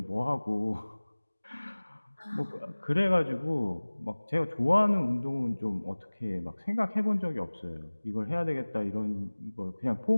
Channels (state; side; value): inverted; both; correlation -1.00